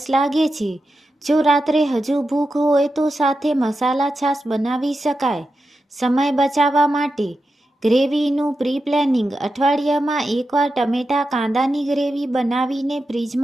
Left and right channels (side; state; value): both; normal; correlation 0.89